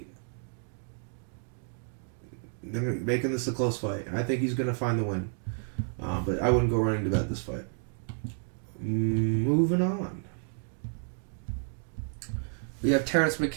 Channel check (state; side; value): silent; left; 57 dB below the other